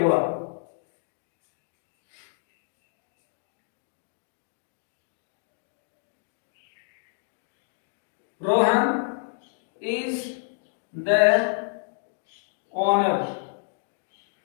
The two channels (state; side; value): silent; right; digital silence